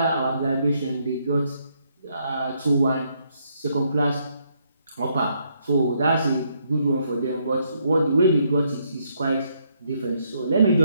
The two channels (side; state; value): both; inverted; correlation -0.74